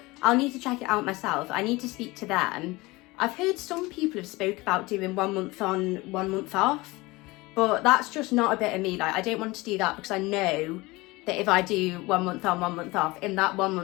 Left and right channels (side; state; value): right; quieter; 21.9 dB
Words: I'll need to check it out myself. I need to speak to them. I've heard some people have spoke about doing 1 month on, 1 month off, but that's just not a bit of me. Like, I don't want to do that because I know that if I do 1 month on, 1 month off, in that 1